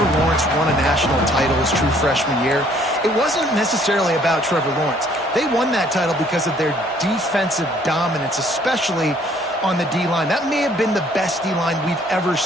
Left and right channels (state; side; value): normal; both; correlation 0.61